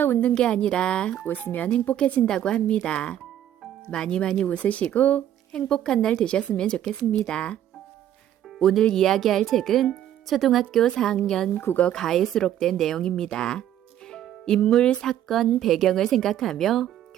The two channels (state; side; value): quieter; left; 11.3 dB